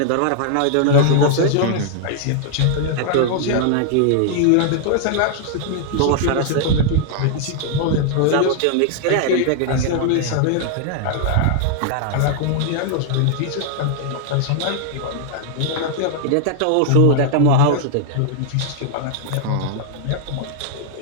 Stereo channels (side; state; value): both; different; correlation -0.01